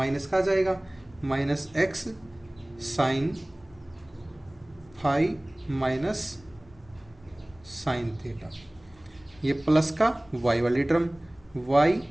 का आ जाएगा, minus x sine phi minus sine theta, ये प्लस का y वाली term y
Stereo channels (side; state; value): left; noise; rumble, 27 dB below the sound